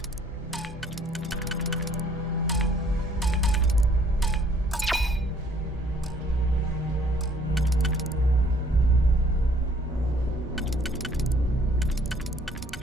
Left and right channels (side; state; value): both; normal; correlation 0.60